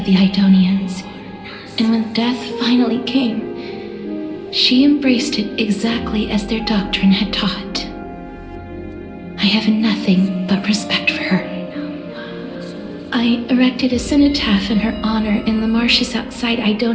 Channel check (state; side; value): identical; both; correlation 1.00